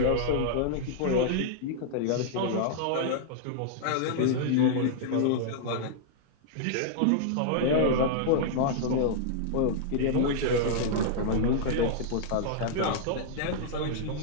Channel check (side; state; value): both; different; correlation -0.01